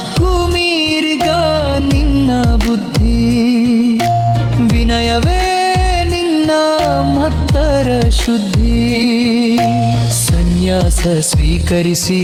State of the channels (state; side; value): identical; both; correlation 1.00